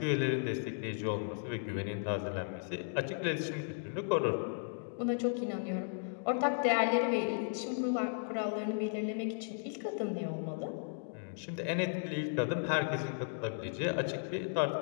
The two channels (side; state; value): right; silent; digital silence